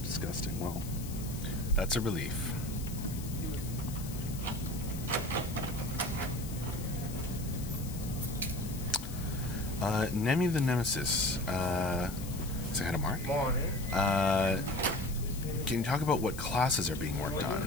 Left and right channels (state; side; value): noise; left; hiss, 13 dB below the sound